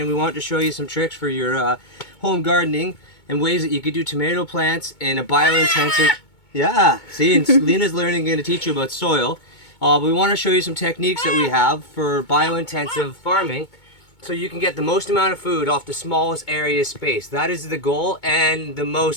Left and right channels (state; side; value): late; right; 2.2 ms